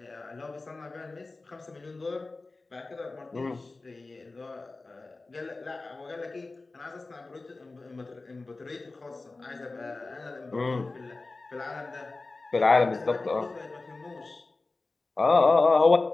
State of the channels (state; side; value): quieter; right; 3.5 dB